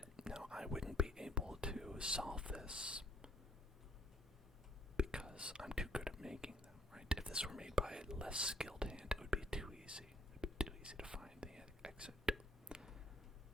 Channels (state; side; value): normal; both; correlation 0.65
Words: now I wouldn't be able to solve this because I'm too good at making them, right? If this were made by a less skilled hand, it would be too easy. It would be too easy to find the exit.